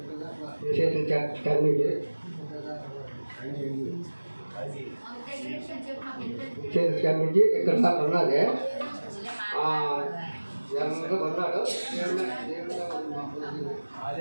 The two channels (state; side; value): inverted; both; correlation -1.00